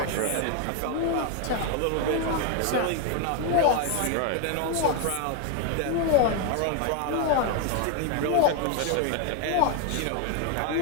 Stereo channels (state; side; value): different; both; correlation 0.01